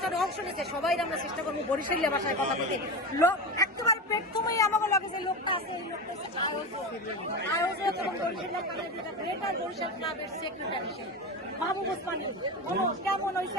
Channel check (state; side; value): normal; both; correlation 0.22